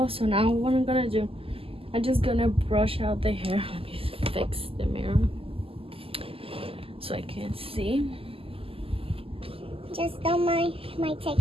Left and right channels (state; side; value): late; left; 0.27 ms